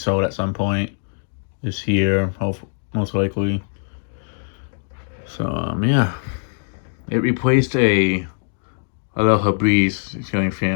at some point this year, most likely. So yeah, it replaced a little Febreze ceiling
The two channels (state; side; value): silent; right; 64 dB below the other